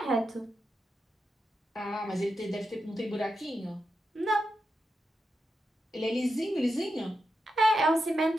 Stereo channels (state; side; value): normal; both; correlation 0.87